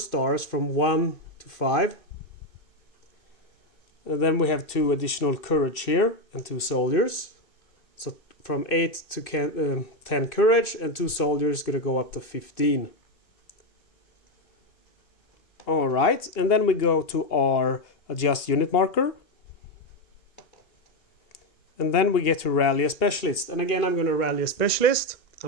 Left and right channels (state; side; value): late; right; 2.6 ms